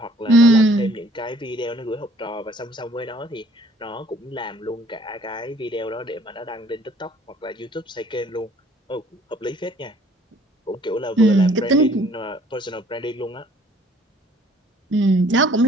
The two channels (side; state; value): both; normal; correlation 0.57